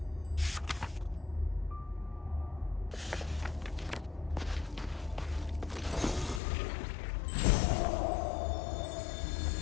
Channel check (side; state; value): right; drops out; at 6.4 s